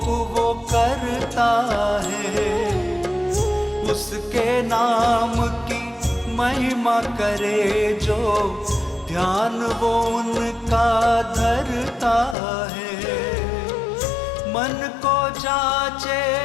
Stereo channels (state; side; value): drops out; right; at 12.4 s